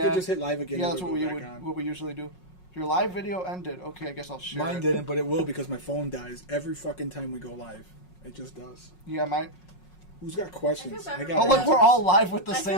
could just hit live again. Yeah, and that's it'll what go we back on. what we usually do. Your live video ended. Okay, I guess I'll share Mine it. didn't, but it will because my phone dies every fucking time we go live. It just does. Yeah, mine. Who's got questions? I feel bad for got. Oh, look, we're all live with the I feel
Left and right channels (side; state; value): right; late; 5.5 ms